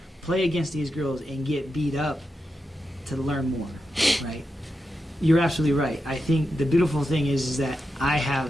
play against these girls and get beat up to learn more, right? You're absolutely right. I think the beautiful thing is that I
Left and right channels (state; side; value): normal; both; correlation 0.88